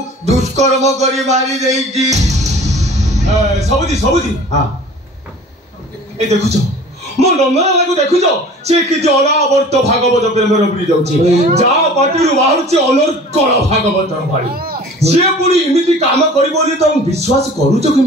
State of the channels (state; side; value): normal; both; correlation 0.44